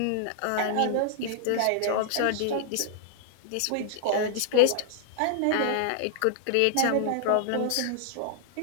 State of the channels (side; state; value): both; different; correlation -0.01